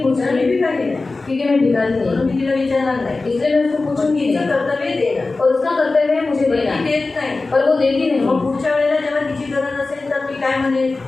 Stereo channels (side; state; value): right; quieter; 3.5 dB